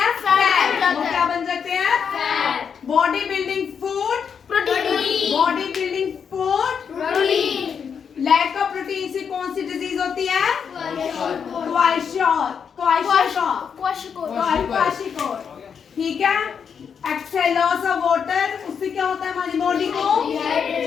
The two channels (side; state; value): right; quieter; 6.9 dB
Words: फैट। वो क्या बन जाते हैं? Fat. Body building food protein. Body building food protein. Lack of protein से कौन सी डिजीज होती है? क्वाशियोर। ठीक है। एक्सेल लॉस ऑफ वाटर, उससे क्या होता है हमारी बॉडी को?